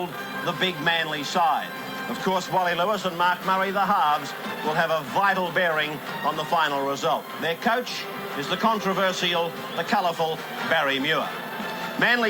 the big Manly side. Of course, Wally Lewis and Mark Murray, the halves, will have a vital bearing on the final result. Their coach is the controversial, the colourful Barry Muir.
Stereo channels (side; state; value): both; identical; correlation 1.00